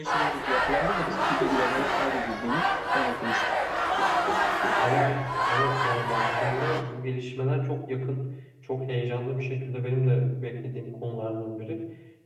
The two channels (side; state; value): both; identical; correlation 1.00